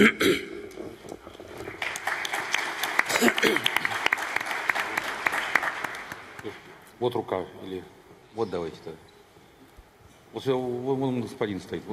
Вот рука, или вот давайте-то. Вот вон господин стоит.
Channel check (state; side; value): identical; both; correlation 1.00